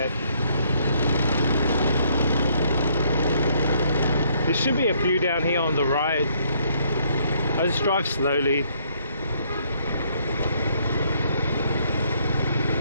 There should be a few down here on the right. I just drive slowly.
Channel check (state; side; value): inverted; both; correlation -0.68